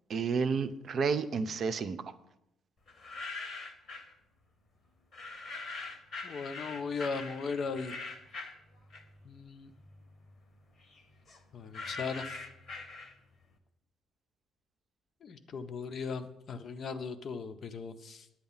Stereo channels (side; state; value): both; normal; correlation 0.71